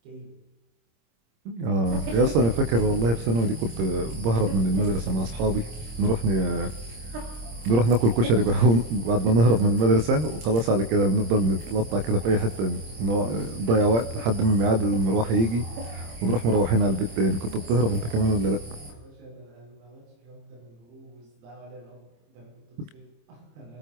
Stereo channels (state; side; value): late; left; 26 ms